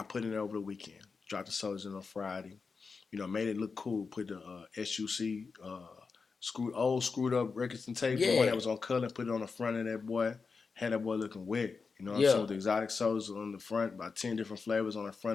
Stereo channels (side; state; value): right; quieter; 4.9 dB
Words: put it in over the weekend. Dropped the soldiers in on Friday. made it look cool. Put the SUC screwed up records and tape, the one that was on color, and put it on the front of that boy. Had that boy looking wet. You know what I'm saying? With the exotic sodas on the front, about 10 different flavors on the